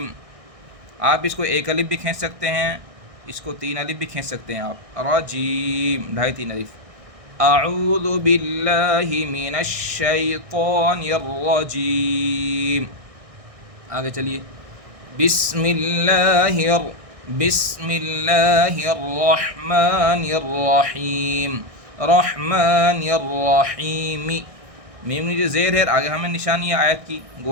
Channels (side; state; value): left; late; 1.6 ms